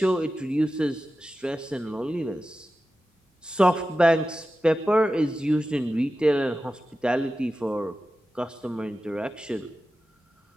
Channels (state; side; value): normal; both; correlation 0.93